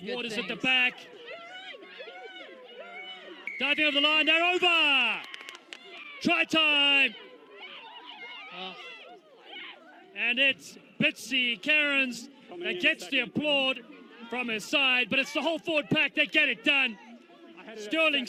good Waters things. at the back. Diving over the line. They're over. Try time. Oh, And it's Bitsy Cairns that gets the applaud from his side, but it's the whole forward pack that get it done. Sterling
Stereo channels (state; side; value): identical; both; correlation 1.00